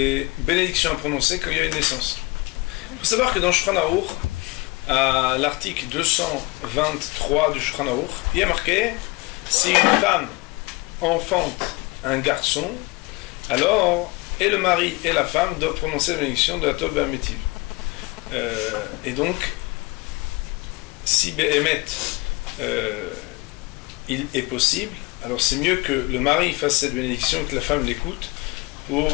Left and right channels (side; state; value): right; quieter; 24.7 dB